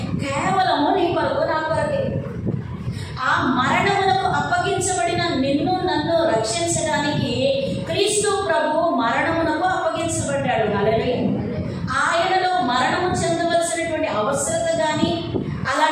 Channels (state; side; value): identical; both; correlation 1.00